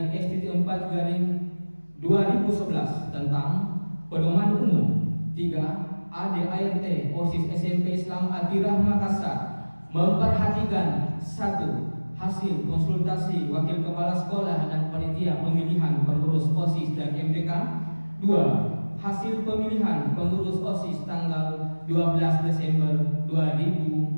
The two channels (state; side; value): inverted; both; correlation -1.00